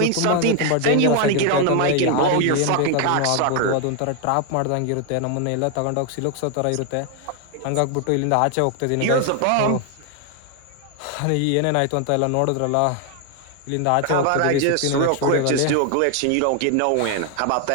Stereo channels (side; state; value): both; different; correlation 0.01